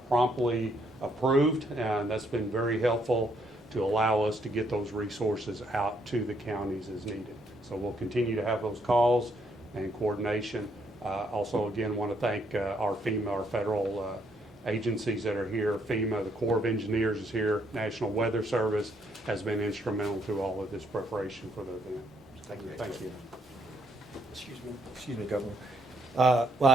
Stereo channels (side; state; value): both; normal; correlation 0.72